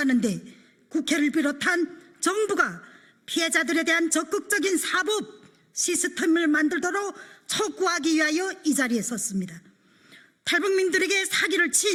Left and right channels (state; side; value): identical; both; correlation 1.00